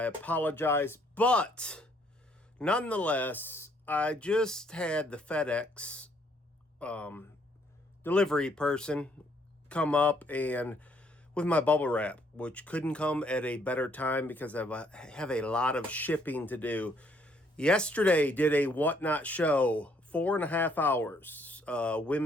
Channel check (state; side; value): normal; both; correlation 0.67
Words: apologize. But nonetheless, I just had the FedEx delivery person come up and with my bubble wrap, which couldn't come at a better time because I have a lot of shipping to do. Yesterday did a whatnot show, 4.5 hours,